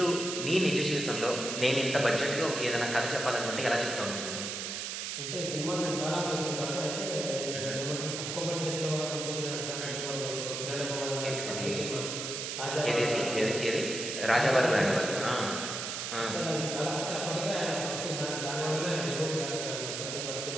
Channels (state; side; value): noise; right; hiss, 4 dB below the sound